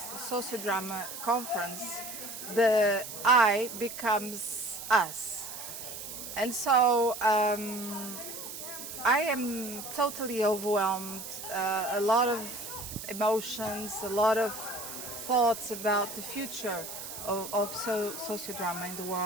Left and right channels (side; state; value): right; noise; hiss, 9 dB below the sound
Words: Sociodrama conference, the I becomes us. And so I am totally overwhelmed, a lot of emotions, a lot of thoughts about the future of sociodrama in the